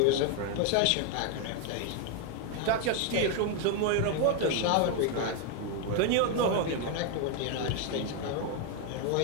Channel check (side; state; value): both; different; correlation 0.01